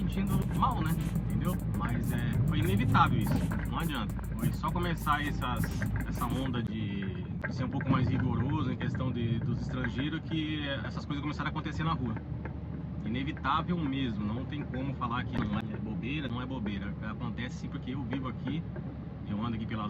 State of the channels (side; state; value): both; identical; correlation 1.00